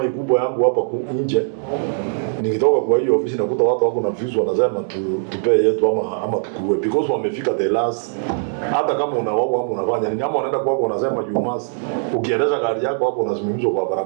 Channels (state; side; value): silent; left; digital silence